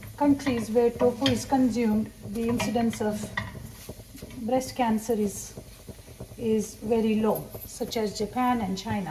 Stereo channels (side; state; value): both; identical; correlation 1.00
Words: countries where tofu is consumed, the incidence of breast cancer is very low, such as Japan and